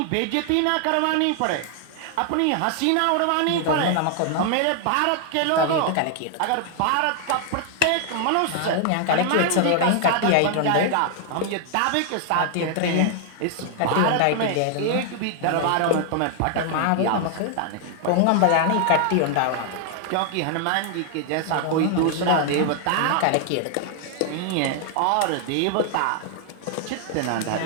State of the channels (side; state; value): both; different; correlation 0.00